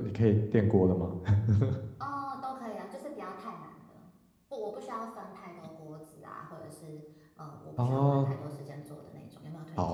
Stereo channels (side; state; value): both; identical; correlation 1.00